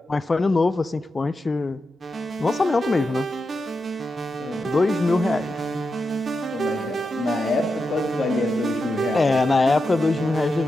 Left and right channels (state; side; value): normal; both; correlation 0.88